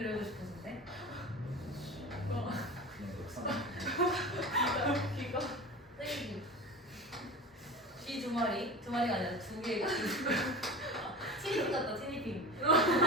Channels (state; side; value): normal; both; correlation 0.31